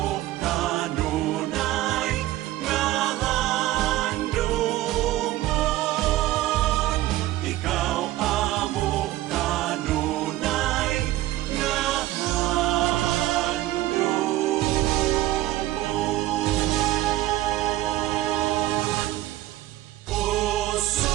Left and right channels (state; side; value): quieter; left; 15.8 dB